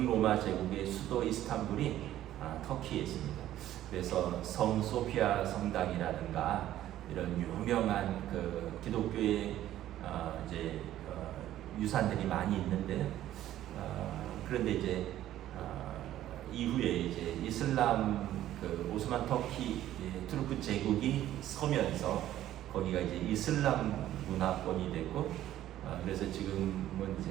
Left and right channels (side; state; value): left; quieter; 13.0 dB